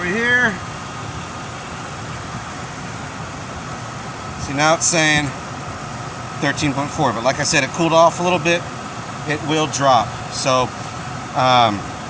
here. See, now it's saying 13.4, but like I said, it cooled off a little bit. It will drop. So,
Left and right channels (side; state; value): both; identical; correlation 1.00